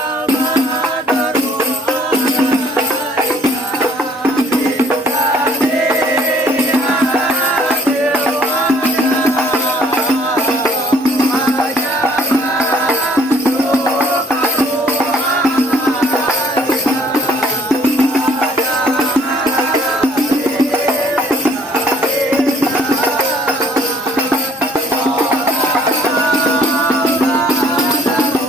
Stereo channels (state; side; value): normal; both; correlation 0.60